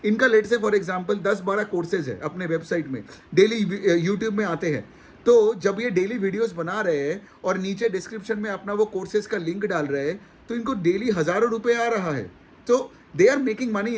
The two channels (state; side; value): identical; both; correlation 1.00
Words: इनका लेट से फॉर एग्जाम्पल 10-12 कोर्सेज है अपने वेबसाइट में, डेली यूट्यूब में आते हैं। तो जब ये डेली वीडियोस बना रहे हैं और नीचे डिस्क्रिप्शन में अपना वो कोर्सेज का लिंक डाल रहे हैं, तो इनको डेली हज़ारों रुपए आ रहा है। तो they are making money